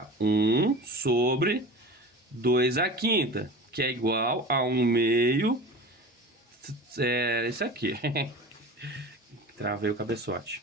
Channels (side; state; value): both; normal; correlation 0.35